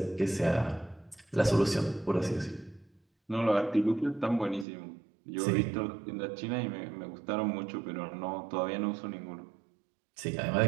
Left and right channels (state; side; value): drops out; left; at 4.7 s